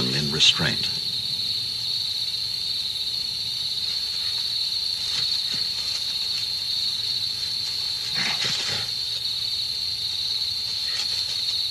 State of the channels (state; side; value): normal; both; correlation 0.95